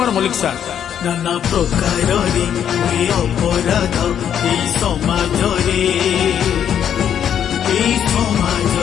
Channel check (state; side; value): quieter; right; 9.1 dB